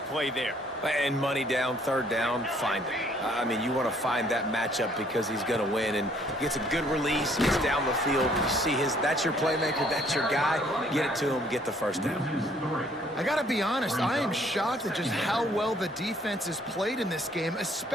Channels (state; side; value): normal; both; correlation 0.62